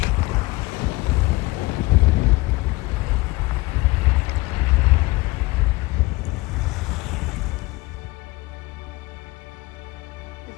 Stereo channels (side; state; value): right; quieter; 21.5 dB